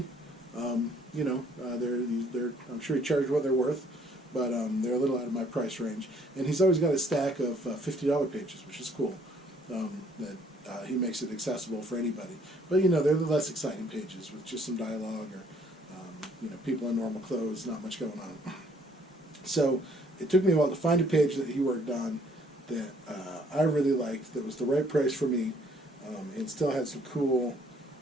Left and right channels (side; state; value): both; normal; correlation 0.62